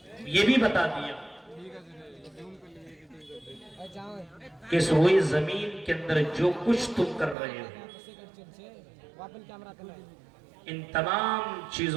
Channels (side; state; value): left; drops out; at 7.4 s